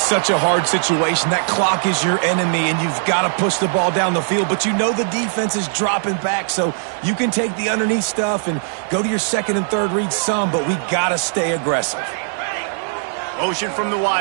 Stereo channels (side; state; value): left; silent; 61 dB below the other